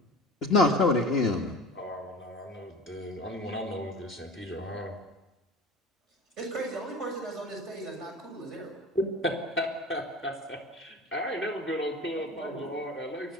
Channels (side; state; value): both; normal; correlation 0.36